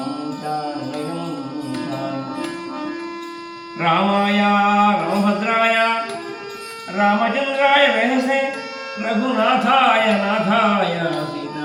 रामाय रामभद्राय रामचंद्राय वेधसे रघुनाथाय नाथाय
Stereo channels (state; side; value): identical; both; correlation 1.00